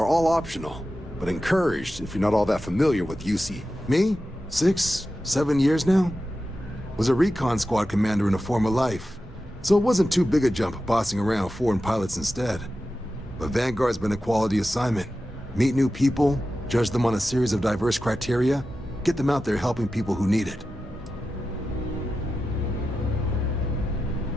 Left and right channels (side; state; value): both; normal; correlation 0.92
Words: all optional, but encouraged if you're not all that familiar with UC. Me? 6, 7 years now? Was a recon squad commander in a former life, so it wasn't too big a jump bossing around foreign pilots instead. But Vanguard's been a quality assignment. Meet new people, judge them on a series of diverse criteria, get them out there helping people who need it.